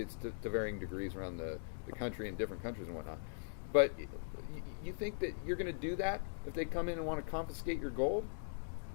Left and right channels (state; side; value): silent; right; digital silence